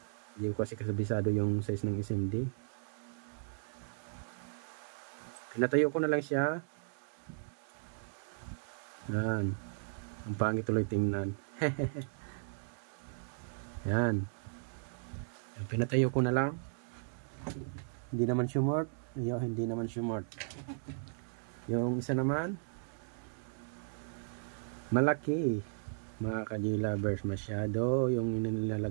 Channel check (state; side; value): silent; left; digital silence